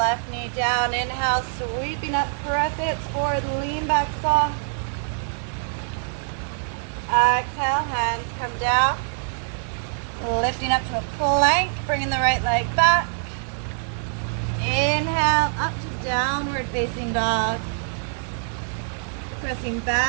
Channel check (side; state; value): left; silent; digital silence